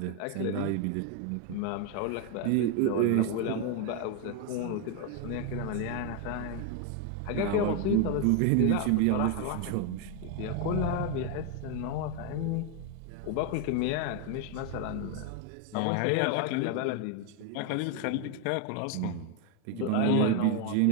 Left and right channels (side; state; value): both; different; correlation 0.01